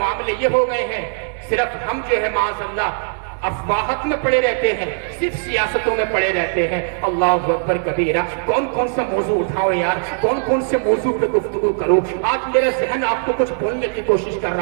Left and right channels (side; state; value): left; silent; digital silence